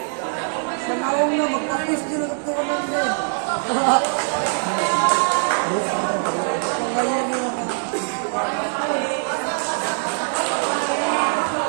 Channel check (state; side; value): silent; left; digital silence